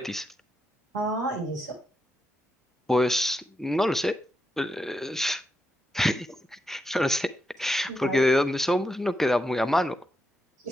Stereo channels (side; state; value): both; normal; correlation 0.85